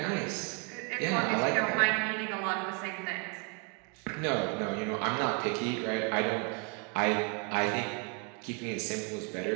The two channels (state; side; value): quieter; left; 34.2 dB